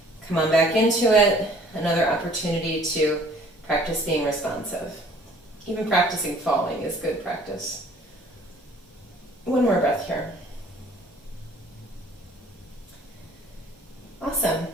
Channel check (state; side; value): normal; both; correlation 0.55